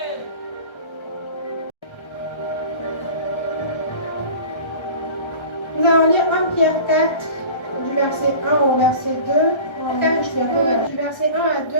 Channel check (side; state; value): right; late; 1.3 ms